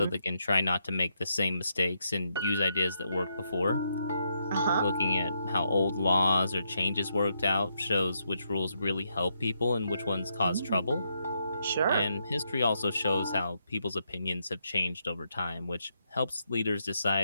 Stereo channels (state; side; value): inverted; both; correlation -0.79